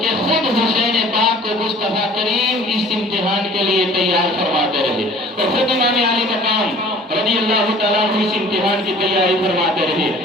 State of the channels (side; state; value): both; normal; correlation 0.49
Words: خود حسین پاک کو مصطفیٰ کریم اس امتحان کے لیے تیار فرماتے رہے، اور خود امام علی مقام رضی اللہ تعالیٰ عنہ اس امتحان کی تیاری فرماتے رہے۔